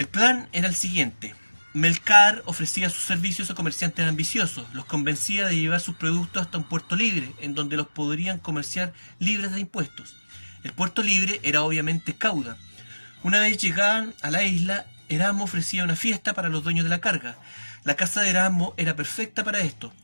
plan era el siguiente. Melcar ofrecía sus servicios a comerciantes ambiciosos, los convencía de llevar sus productos hasta un puerto libre, en donde los podrían comerciar libres de impuestos. El puerto libre era obviamente Cauda. Una vez llegaban a la isla, Erasmo ofrecía una fiesta para los dueños de la carga. La casa de Erasmo era perfecta para esto,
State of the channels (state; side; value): inverted; both; correlation -1.00